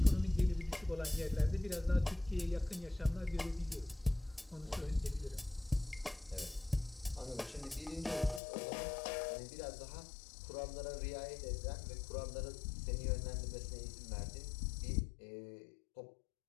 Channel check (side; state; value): right; drops out; at 8.4 s